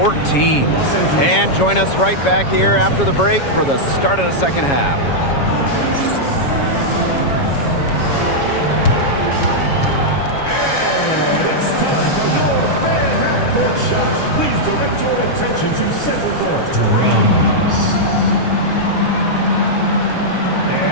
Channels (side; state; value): right; late; 7.2 ms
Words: And join us right back here after the break for the start of the second half. It's time for your fan half-court shots. Please direct your attention to center court. Drums.